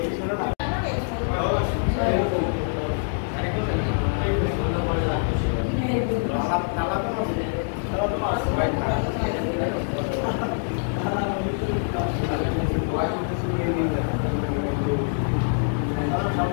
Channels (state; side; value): silent; right; digital silence